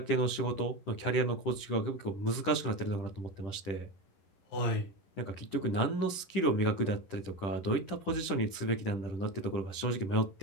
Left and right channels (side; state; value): right; late; 10 ms